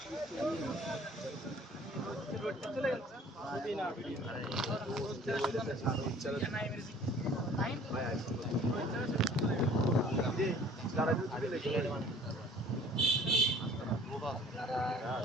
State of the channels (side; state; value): both; normal; correlation 0.51